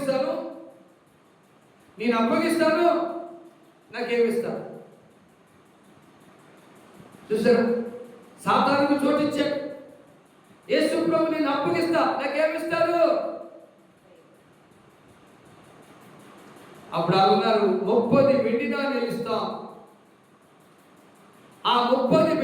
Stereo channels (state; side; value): identical; both; correlation 1.00